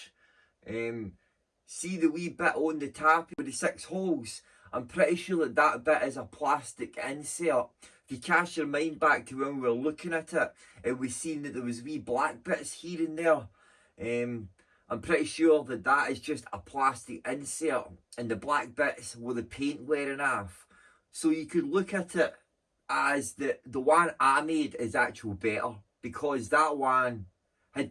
see the wee bit on the tap with the 6 holes, I'm pretty sure that bit is a plastic insert. If you cast your mind back to when we were looking at it, and we seen that there was wee black bits here and there. I'm pretty sure that is just a plastic insert, and the black bits were the paint wearing off. So you could look at it as the one I made is actual better, because that one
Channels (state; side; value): identical; both; correlation 1.00